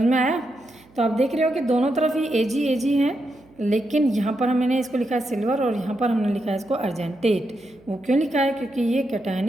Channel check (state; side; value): noise; right; hum, 28 dB below the sound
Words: में आया। तो आप देख रहे हो कि दोनों तरफ ही Ag हैं, लेकिन यहाँ पर हमने इसको लिखा है सिल्वर और यहाँ पर हमने लिखा है इसको अर्जेंटेट। वो क्यों लिखा है, क्योंकि ये